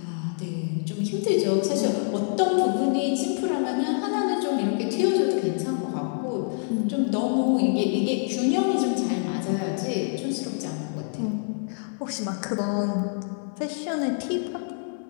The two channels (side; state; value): right; silent; 61 dB below the other